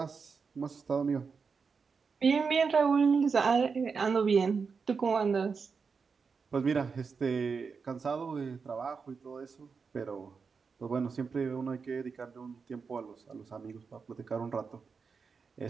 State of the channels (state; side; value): quieter; left; 5.3 dB